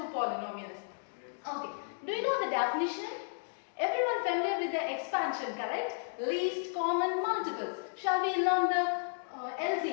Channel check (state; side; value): silent; right; digital silence